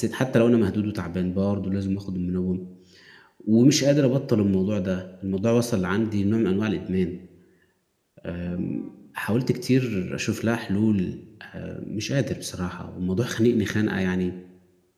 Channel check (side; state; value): both; identical; correlation 1.00